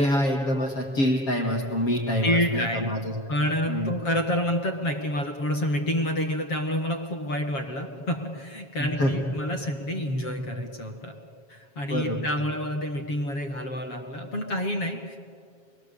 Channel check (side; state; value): right; late; 7.3 ms